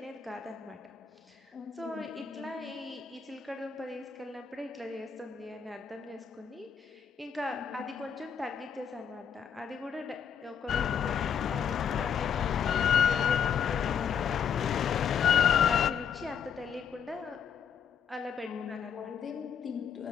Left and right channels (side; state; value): right; quieter; 7.5 dB